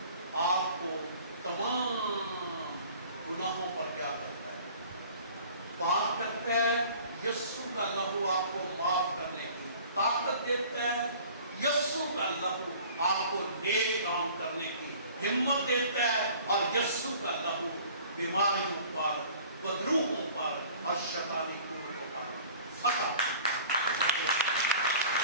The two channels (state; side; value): inverted; both; correlation -0.47